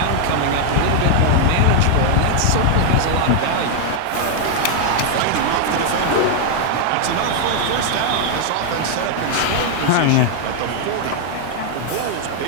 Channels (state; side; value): different; both; correlation 0.00